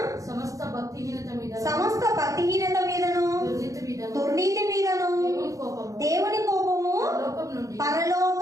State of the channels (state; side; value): late; left; 0.16 ms